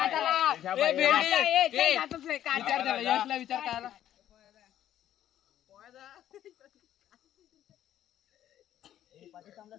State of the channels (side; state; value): right; quieter; 11.7 dB